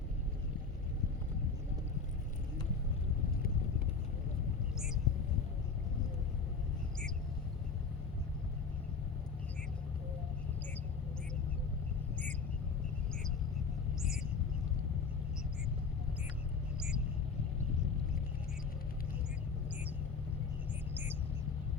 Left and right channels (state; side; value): quieter; right; 5.0 dB